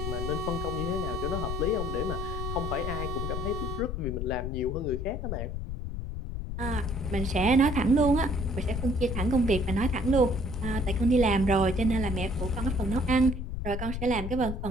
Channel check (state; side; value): noise; left; rumble, 4 dB below the sound